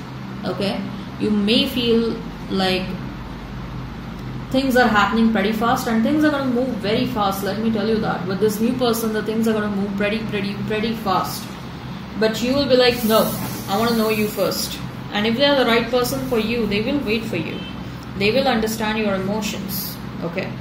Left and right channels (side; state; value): both; identical; correlation 1.00